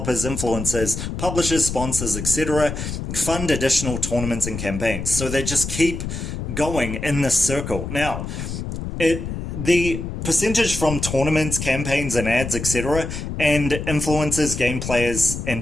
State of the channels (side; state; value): left; noise; rumble, 6 dB below the sound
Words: influencers, publishers, sponsors, etc. fund additional tournaments and campaigns. So they just keep going in this circle. Now, the percentage from tournaments, campaigns, and ads, etc., and influencers, game players,